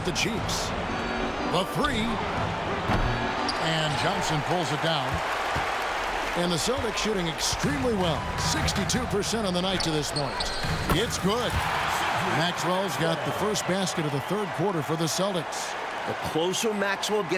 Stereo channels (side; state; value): both; identical; correlation 1.00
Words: to Cheeks. The 3. And Johnson pulls it down. And the Celtics shooting extremely well. 62% on the night to this point. It's good. Maxwell's got the first basket of the third quarter for the Celtics. The closer Maxwell